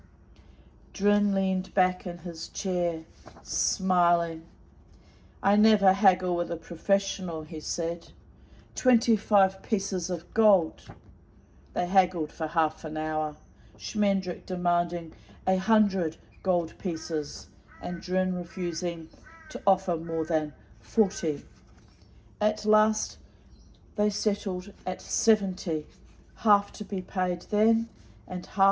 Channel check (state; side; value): identical; both; correlation 1.00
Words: Drin leaned back in his chair, smiling. "I never haggle with a professional," he said. 25 pieces of gold." They haggled for half an hour, Schmendrick demanding 100 gold pieces, and Drin refusing to offer more than 40. At last they settled at 70, half to be paid then, and